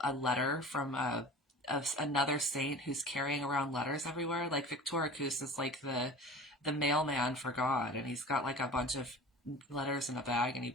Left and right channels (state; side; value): normal; both; correlation 0.38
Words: letter from another saint who's carrying around letters everywhere. Like Victoricus is like the mailman for God, and he's got like a bunch of letters in a bag, and he